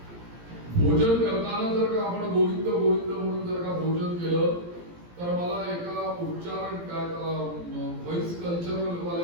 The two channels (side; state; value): left; late; 17 ms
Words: भोजन करताना जर का आपण गोविंद गोविंद म्हणून जर का भोजन केलं तर मला एका उच्चारण काय व्हॉइस कल्चरल